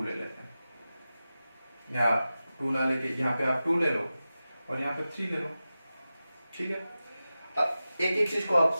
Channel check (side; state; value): both; inverted; correlation -0.94